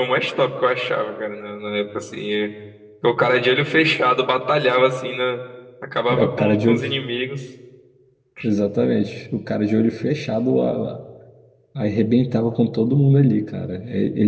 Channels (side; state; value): both; identical; correlation 1.00